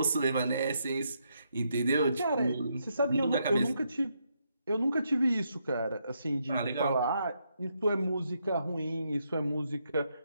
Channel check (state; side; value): inverted; both; correlation -0.78